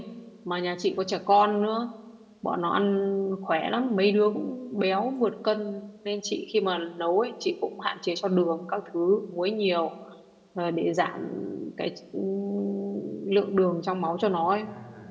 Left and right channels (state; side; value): identical; both; correlation 1.00